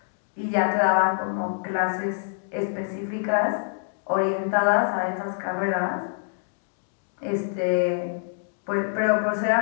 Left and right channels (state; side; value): silent; right; digital silence